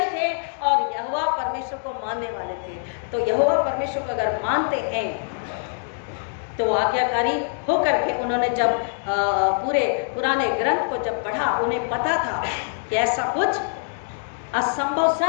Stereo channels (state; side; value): silent; right; digital silence